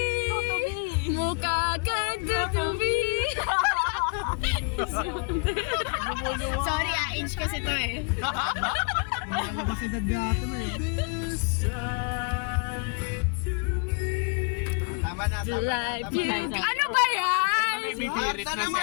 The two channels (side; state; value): right; quieter; 35.3 dB